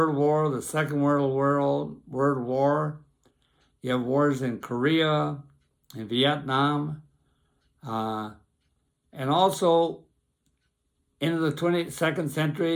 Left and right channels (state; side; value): identical; both; correlation 1.00